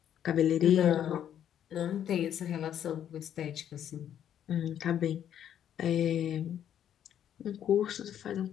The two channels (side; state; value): right; quieter; 10.0 dB